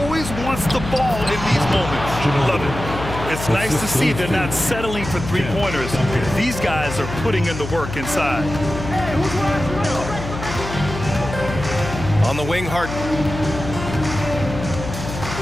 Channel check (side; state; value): left; noise; hum, 8 dB below the sound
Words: wants the ball in these moments. Love it. It's nice to see they're not settling for three-pointers. These guys are putting in the work inside. On the wing, Harden.